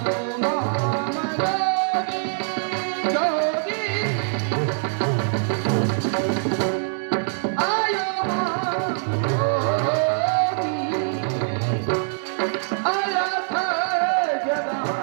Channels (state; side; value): silent; left; digital silence